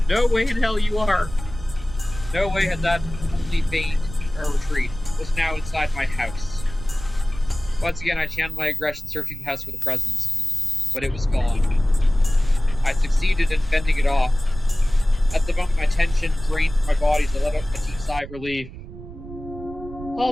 No way in hell you are. No way had that only feigned a retreat was now inside my house. Once again, I channeled my aggression, searching the house for the presence, but it was gone. I succeeded in fending it off. At the moment, my tension drained from my body as I let out a deep sigh of relief.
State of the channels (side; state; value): right; noise; rumble, 13 dB below the sound